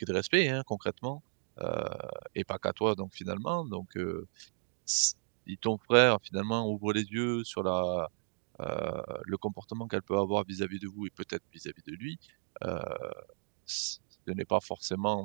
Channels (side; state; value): left; silent; digital silence